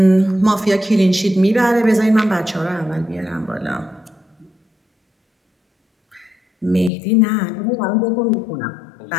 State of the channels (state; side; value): drops out; right; at 6.9 s